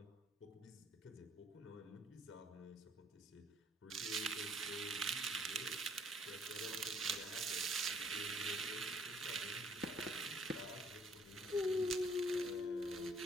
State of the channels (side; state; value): both; normal; correlation 0.61